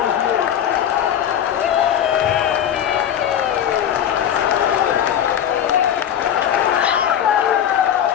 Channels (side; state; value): right; quieter; 9.8 dB